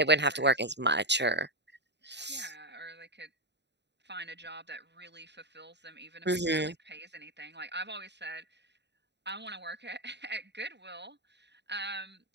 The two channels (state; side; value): late; left; 0.50 ms